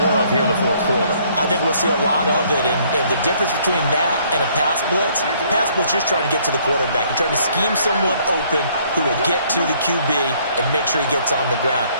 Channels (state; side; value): inverted; both; correlation -0.63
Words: of here in the 4th quarter. I think we'll see a lot of it, and the difference between that and a pass blitz, you're just trying to get to the quarterback. You're trying to scheme someone open who will get to the QB and make sure he gets on the ground.